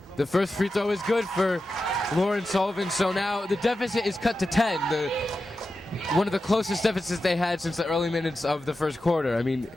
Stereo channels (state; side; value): normal; both; correlation 0.91